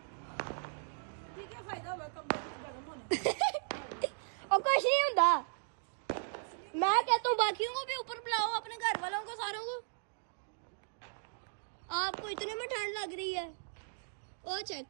और कुछ नहीं होता, मैं कहता हूँ बाकियों को भी ऊपर बुलाओ, अपने घर वालों को, सारों को। आपको इतने में ठंड लग रही है। ओ चेक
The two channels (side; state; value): left; silent; digital silence